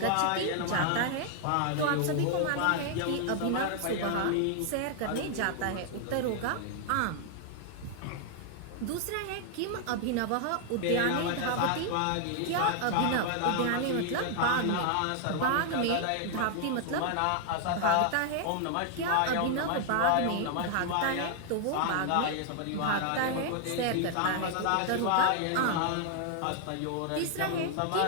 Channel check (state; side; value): different; both; correlation 0.00